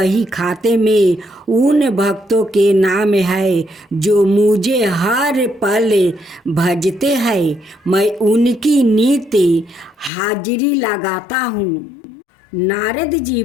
खाते में उन भक्तों के नाम है जो मुझे हर पल भजते हैं। मैं उनकी नित्य हाजिरी लगाता हूँ। नारद जी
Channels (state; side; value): drops out; right; at 10.1 s